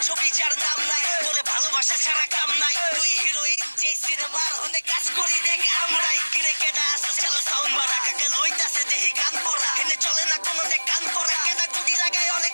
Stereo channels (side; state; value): both; inverted; correlation -1.00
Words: ছবি যার নাম নাই, তোরে ভালোবাসা ছাড়া কাম নাই, তুই হিরোইন যে সিনেমার হনে কাজ করি দেখ আমরাই। কিরে কেডা আসো চালো সাউন্ড বাড়া, কাকা লইতাছে দেহি গান পড়া, হেনে চলে না কোনো দেখ কান পড়া, কেডা গুডি লাগায় অনেক